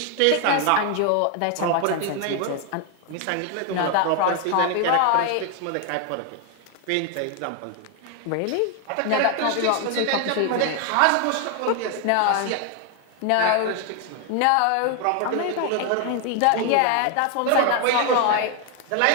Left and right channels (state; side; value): different; both; correlation 0.01